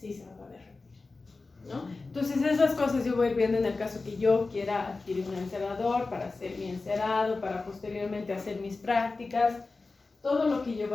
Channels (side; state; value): right; quieter; 3.7 dB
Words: se me va a derretir, ¿no? Entonces esas cosas yo voy viendo en el caso que yo quiera adquirir un encerador para hacer mi encerado, para posteriormente hacer mis prácticas, todo lo que yo